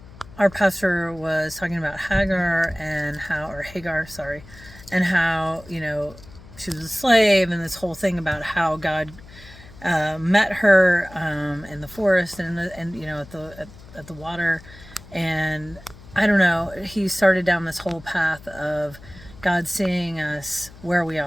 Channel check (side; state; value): left; noise; hum, 20 dB below the sound